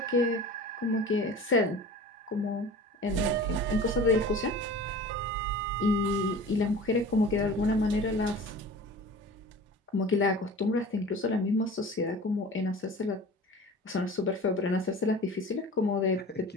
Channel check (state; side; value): normal; both; correlation 0.39